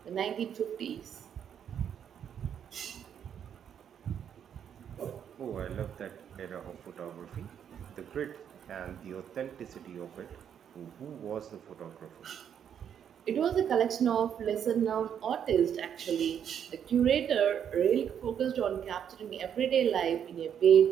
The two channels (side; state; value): left; quieter; 8.7 dB